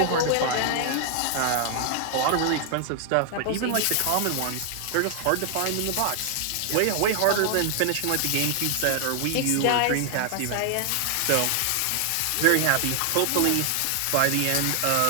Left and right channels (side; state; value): both; different; correlation 0.00